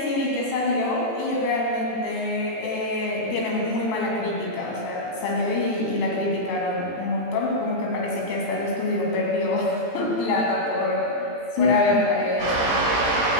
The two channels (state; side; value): late; right; 18 ms